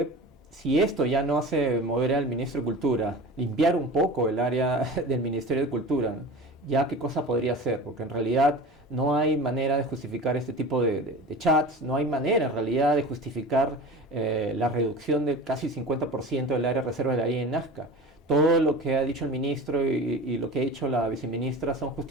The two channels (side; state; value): both; normal; correlation 0.35